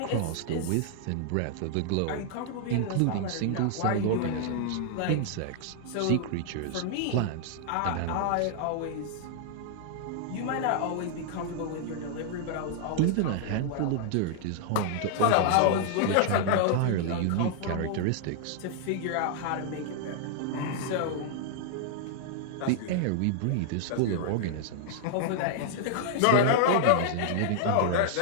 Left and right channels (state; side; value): different; both; correlation -0.01